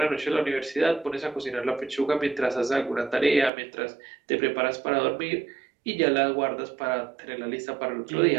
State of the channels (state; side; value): drops out; left; at 3.5 s